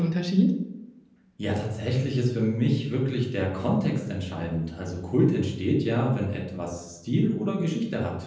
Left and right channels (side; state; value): both; identical; correlation 1.00